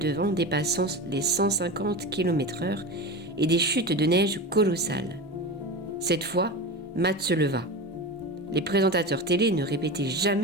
vent dépassant les 150 km/h et des chutes de neige colossales. Cette fois, Matt se leva. Les présentateurs télé ne répétaient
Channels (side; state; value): both; normal; correlation 0.26